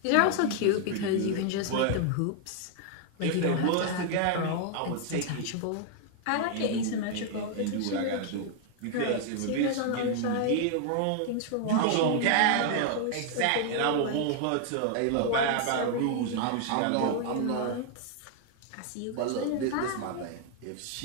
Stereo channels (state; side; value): different; both; correlation 0.00